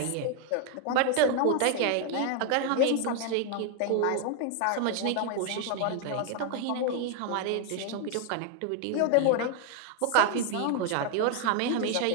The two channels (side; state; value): both; different; correlation 0.00